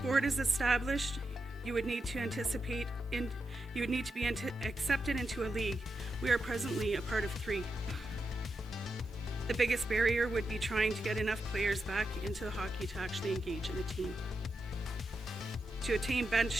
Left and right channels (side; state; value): both; normal; correlation 0.87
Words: is established, you would need to be accepted into a league. We are presently a part of 3. The biggest barrier would be trying to get enough players back into the hockey to actually engage in a team. To attain bench